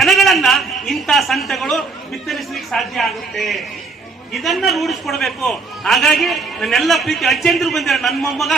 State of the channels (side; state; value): left; quieter; 4.2 dB